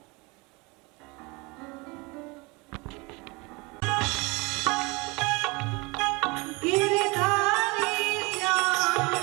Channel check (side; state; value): left; quieter; 26.4 dB